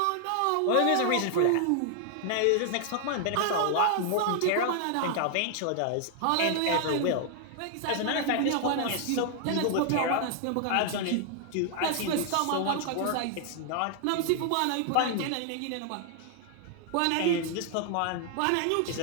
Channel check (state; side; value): different; both; correlation 0.00